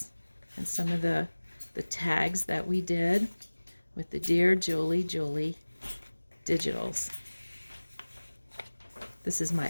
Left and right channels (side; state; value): both; inverted; correlation -1.00